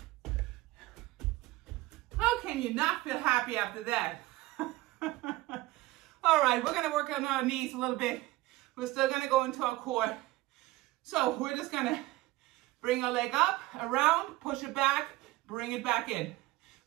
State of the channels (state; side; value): quieter; left; 19.0 dB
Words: How can you not feel happy after that? All right, we're gonna work on our knees a little bit. We're still gonna go into our core. So we're just gonna bring our leg up, around, push it back, bring it back in.